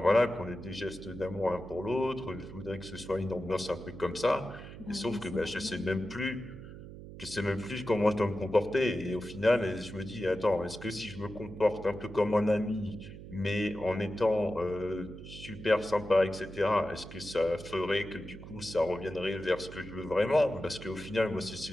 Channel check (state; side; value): noise; right; hum, 13 dB below the sound